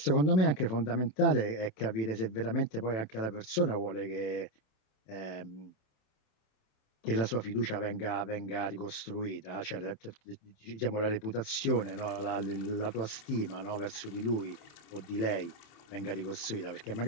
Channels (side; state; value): right; late; 27 ms